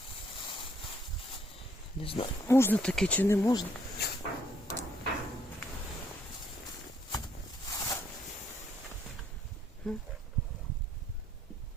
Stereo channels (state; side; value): normal; both; correlation 0.68